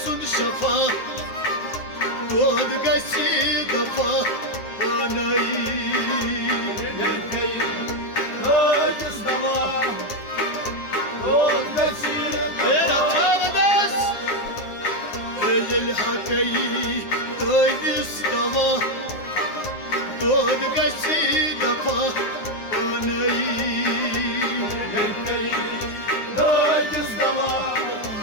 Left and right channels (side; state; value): right; late; 9.6 ms